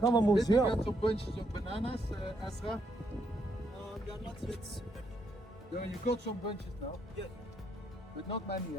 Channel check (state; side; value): normal; both; correlation 0.76